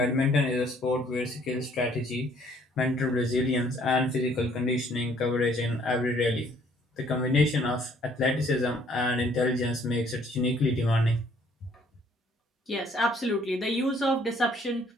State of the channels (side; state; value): both; normal; correlation 0.62